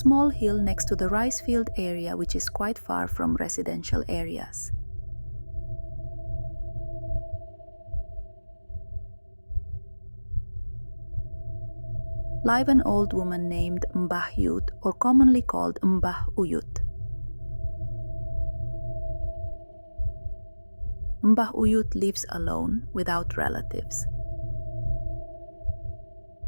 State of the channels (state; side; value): inverted; both; correlation -1.00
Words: hill next to the rice field area, which is quite far from residential areas. Live an old woman named Mbahyut, or commonly called Mbah Uyut. Mbah Uyut lives alone, without relatives.